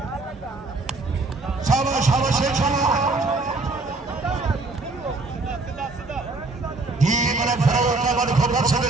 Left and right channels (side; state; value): left; quieter; 3.5 dB